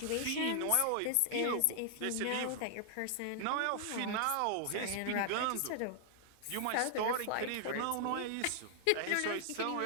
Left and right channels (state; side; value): different; both; correlation 0.00